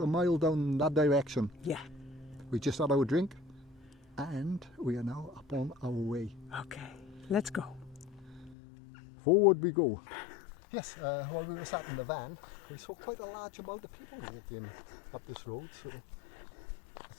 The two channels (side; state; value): right; drops out; at 8.6 s